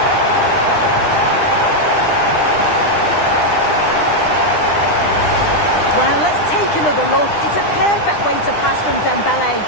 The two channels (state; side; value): late; right; 9.9 ms